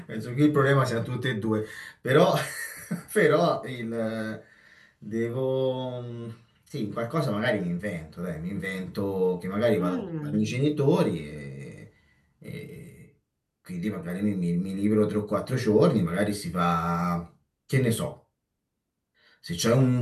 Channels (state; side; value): identical; both; correlation 1.00